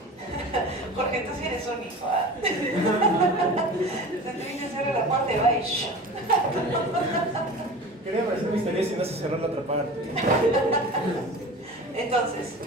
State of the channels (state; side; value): normal; both; correlation 0.36